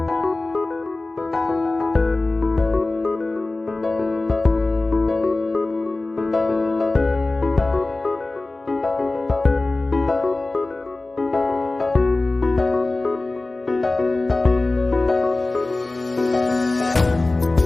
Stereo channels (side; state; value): right; quieter; 3.1 dB